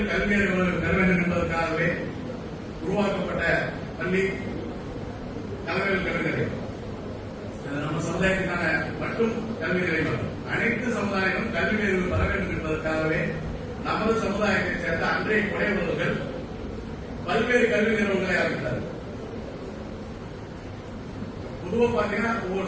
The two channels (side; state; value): both; identical; correlation 1.00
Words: கல்வி அறிவு பெற வேண்டும் என்பதற்காகவே உருவாக்கப்பட்ட பள்ளி தலைவர் கல்வி நிலையம். நம்ம சமுதாயத்திற்கான மட்டும் கல்வி நிலையம், அனைத்து சமுதாயங்களும் கல்வி அறிவு பெற வேண்டும் என்பதற்காகவே நமது சமுதாயத்தைச் சேர்ந்த அன்றைய குறைவர்கள் பல்வேறு கல்வி நிறுவனங்களை ஆரம்பித்தார்கள். பொதுவாக பாத்தீங்கன்னா ஒவ்வொரு